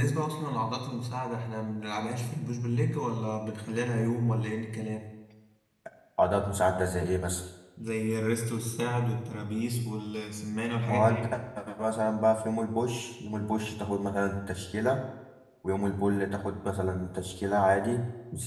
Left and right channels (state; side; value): identical; both; correlation 1.00